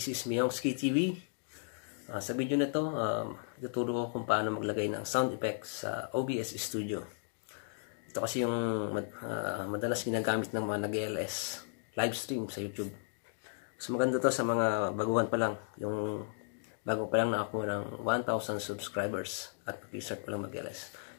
is Miyongski TV. Sa video na to, ituturo ko kung paano maglagay ng sound effects sa OBS Studio. Ito kasi yung madalas ginagamit ng mga nag-LS live stream sa YouTube. Mas maganda to sa mga baguhan pa lang, yung bago pa lang na ako ng 1,000 subscribers at mag-start pa lang mag-LS.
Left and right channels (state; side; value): silent; right; digital silence